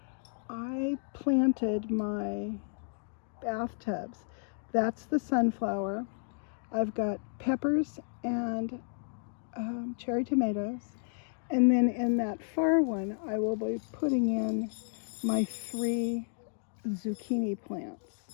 I planted my bathtubs. That's the sunflower. I've got peppers and cherry tomatoes. And then in that far one, I will be putting in my 3 zucchini plants.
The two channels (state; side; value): silent; right; digital silence